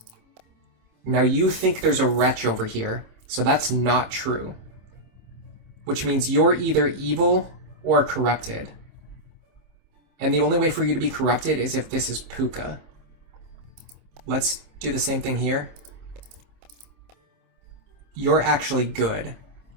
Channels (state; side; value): late; left; 26 ms